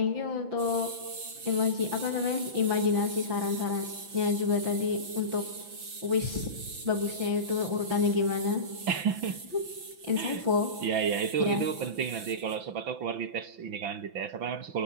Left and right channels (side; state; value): left; late; 5.9 ms